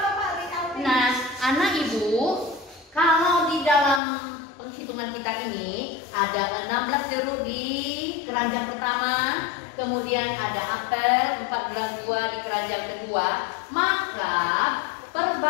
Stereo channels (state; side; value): drops out; right; at 4.0 s